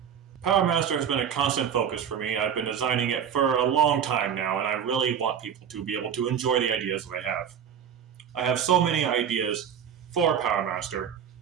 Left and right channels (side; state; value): left; quieter; 8.4 dB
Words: Power Master has been a constant focus for me. I've been designing it for a long time now, and I really want people to be able to enjoy the ideas that I have. I have so many ideas for Power Master